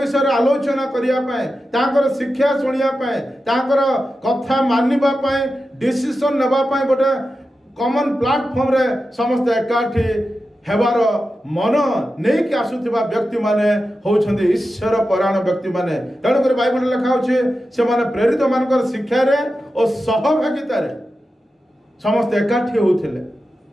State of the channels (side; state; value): both; normal; correlation 0.91